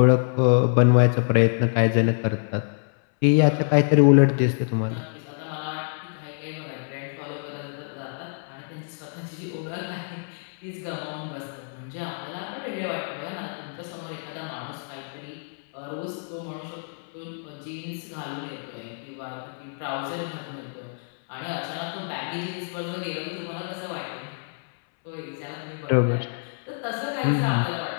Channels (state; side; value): silent; right; 61 dB below the other